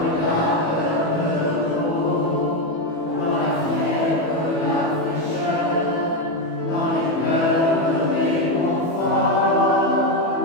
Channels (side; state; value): right; late; 18 ms